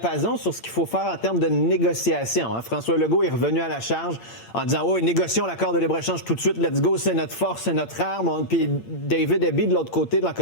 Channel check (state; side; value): late; right; 8.6 ms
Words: sur ce qu'il faut faire en termes de négociation. Hein. François Legault est revenu à la charge en disant « Oh, négocions l'accord de libre-échange tout de suite, let's go, c'est notre force, c'est notre arme. » Puis David Eby, de l'autre côté, de la